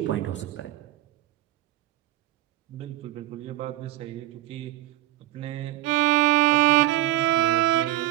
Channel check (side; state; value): left; quieter; 14.9 dB